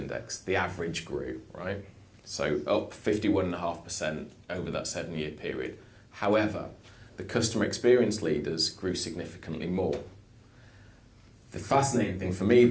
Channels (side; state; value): both; identical; correlation 1.00